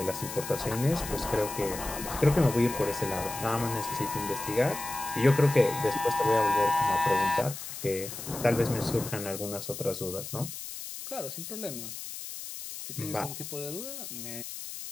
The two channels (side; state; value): left; noise; hiss, 9 dB below the sound